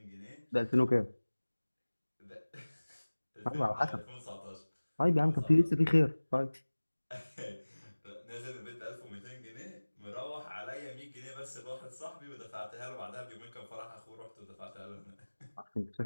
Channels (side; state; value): both; inverted; correlation -1.00